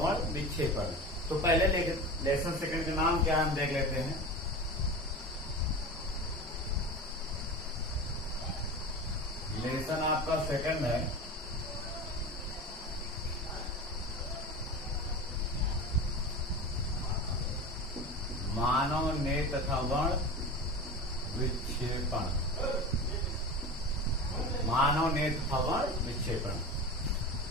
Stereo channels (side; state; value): both; normal; correlation 0.29